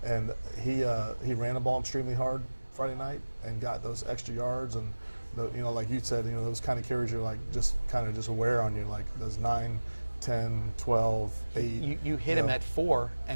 And he ran the ball extremely hard Friday night and got those extra yards. And, like you said, those kind of carries you're like just aware on you, like those 9, 10, 12, 8. You hit him at 4,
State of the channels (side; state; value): both; inverted; correlation -1.00